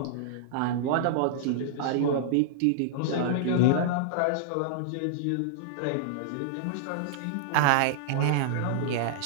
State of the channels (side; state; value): both; different; correlation -0.02